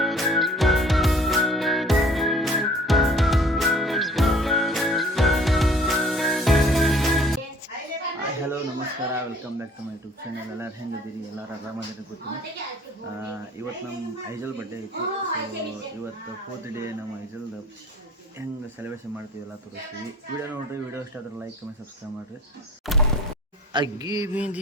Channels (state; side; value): normal; both; correlation 0.51